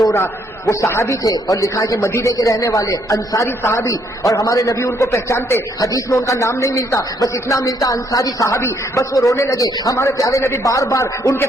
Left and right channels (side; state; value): both; normal; correlation 0.70